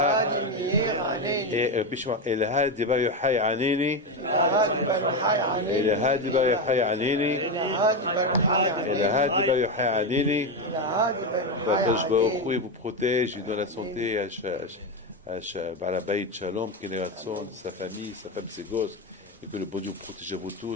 de Bar Yochai aneni, et la de Bar Yochai aneni, et la de Bar Yochai aneni. Qu'Hakadosh Baruch Hu vous protège, il donne la santé à Baal Habayit Shalom, qu'il ait ratson, sa famille, sa femme, ses gosses, et que le bon Dieu vous protège à vous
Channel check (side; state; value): both; normal; correlation 0.12